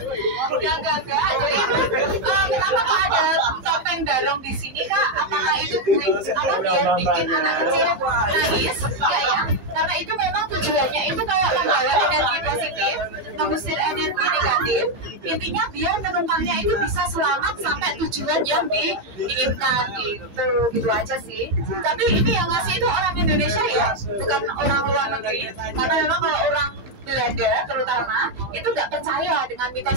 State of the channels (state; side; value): late; left; 15 ms